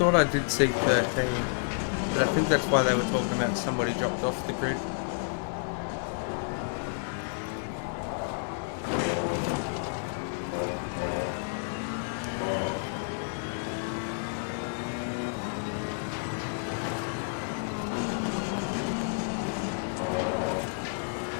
I did see 13, but I think that's why they were talking about somebody dropped off the grid.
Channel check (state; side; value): silent; right; 55 dB below the other